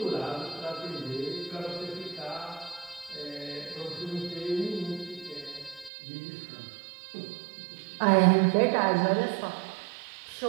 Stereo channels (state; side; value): drops out; left; at 5.9 s